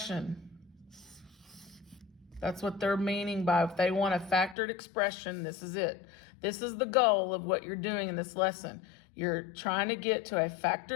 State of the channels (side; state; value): right; drops out; at 4.5 s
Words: That's what they're meaning by if they want a factored expression, this is it. This is the goal of what you're doing in this lesson. You're trying to get to a